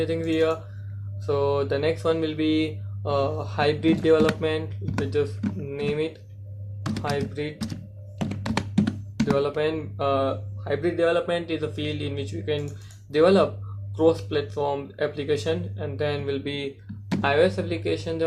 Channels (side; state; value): both; identical; correlation 1.00